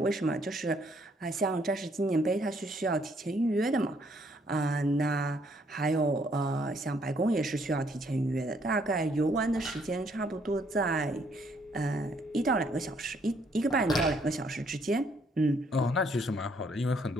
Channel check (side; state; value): both; normal; correlation 0.68